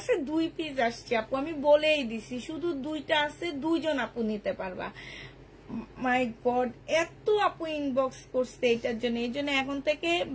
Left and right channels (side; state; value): both; identical; correlation 1.00